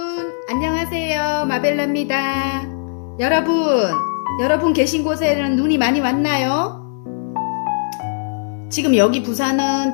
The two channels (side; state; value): right; silent; 60 dB below the other